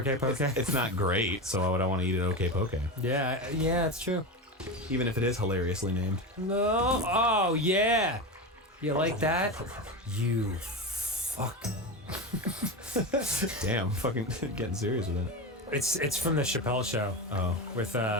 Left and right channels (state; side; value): normal; both; correlation 0.20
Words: poke. It's not great, so why would I want to eat it okay poke? Yeah, it's true. Even if it is hilariously named. No. Oh, yeah. You like that? You fuck. Damn, fucking getting serious with it. It's from the Chappelle Show. Oh. With